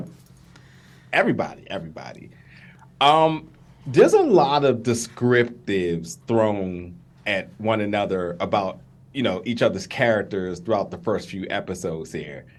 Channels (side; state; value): both; identical; correlation 1.00